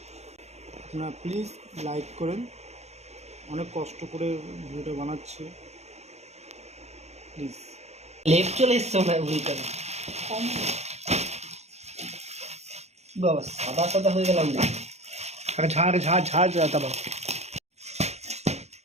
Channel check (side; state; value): left; late; 0.32 ms